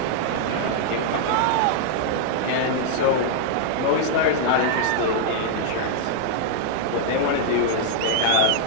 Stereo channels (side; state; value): both; different; correlation -0.01